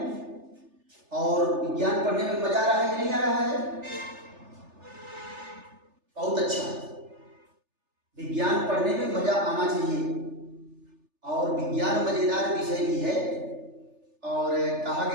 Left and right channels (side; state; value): left; late; 3.4 ms